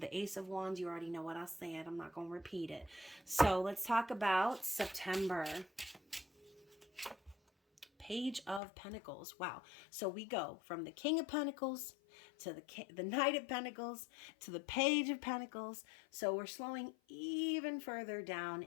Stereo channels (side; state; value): right; drops out; at 8.6 s